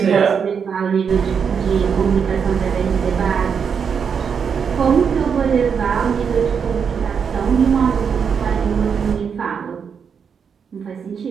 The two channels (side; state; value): left; quieter; 6.7 dB